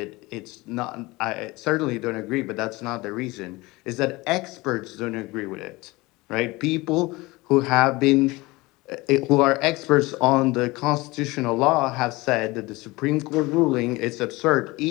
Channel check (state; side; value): quieter; right; 22.1 dB